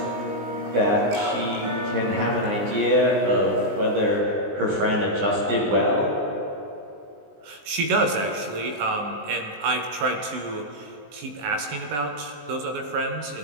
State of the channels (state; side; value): late; left; 19 ms